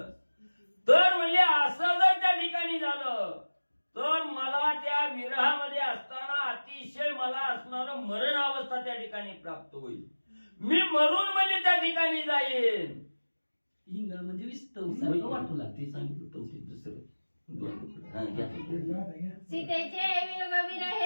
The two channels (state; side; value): inverted; both; correlation -1.00